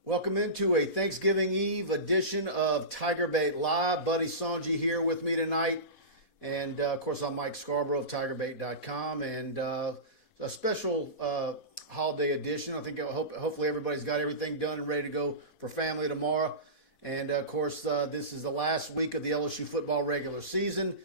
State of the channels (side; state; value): right; late; 4.1 ms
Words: Welcome into a Thanksgiving Eve edition of TigerBait Live. Buddy Songy here with me tonight. And, of course, I'm Mike Scarborough of TigerBait.com. And a special holiday edition. I think hopefully everybody's got everything done and ready to go for family tomorrow. And, of course, this is the last week of the LSU football regular season.